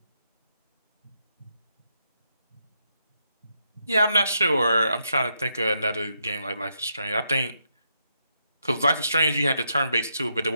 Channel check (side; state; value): both; inverted; correlation -0.80